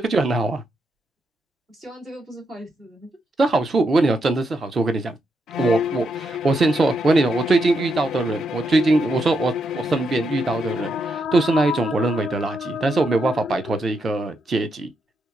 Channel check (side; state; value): both; normal; correlation 0.81